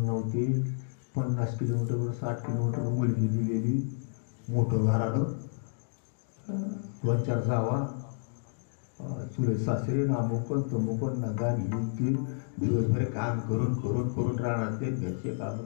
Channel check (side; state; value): right; silent; digital silence